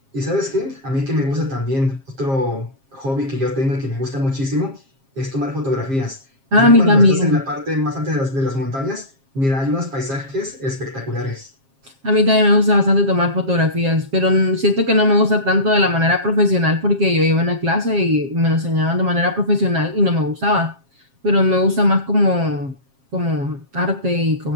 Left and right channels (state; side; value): late; left; 7.4 ms